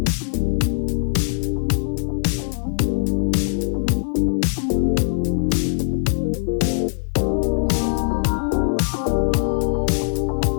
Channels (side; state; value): right; silent; 64 dB below the other